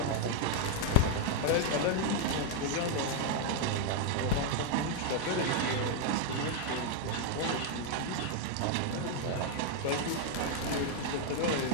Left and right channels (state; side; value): different; both; correlation 0.00